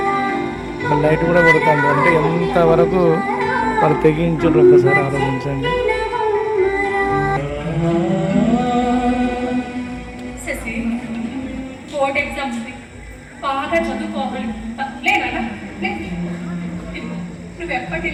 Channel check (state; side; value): identical; both; correlation 1.00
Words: లైట్ కూడా కొడుతుంది అంటే ఎంతవరకు వాళ్ళు తెగించారు ఒకసారి ఆలోచించండి. శశి, బోర్డ్ ఎగ్జామ్స్ బాగా చదువుకోవాలి. లేనా నువ్వు